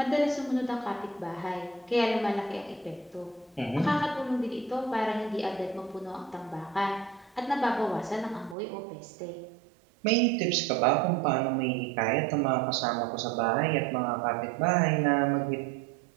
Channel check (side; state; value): left; drops out; at 8.6 s